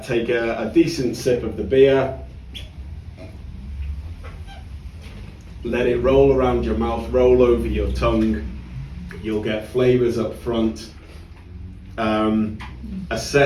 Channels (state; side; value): identical; both; correlation 1.00